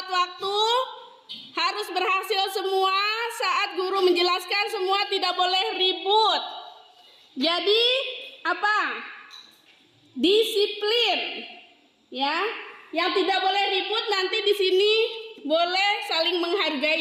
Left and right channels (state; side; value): identical; both; correlation 1.00